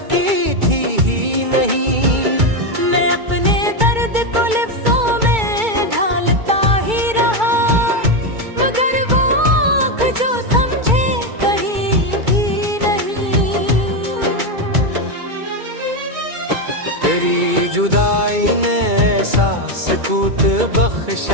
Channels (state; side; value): late; left; 2.3 ms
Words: की थी ही नहीं। मैं अपने दर्द को लिफ्ज़ों में ढालता ही रहा, मगर वो आँख जो समझे कहीं भी नहीं। तेरी जुदाई ने ऐसा सुकूत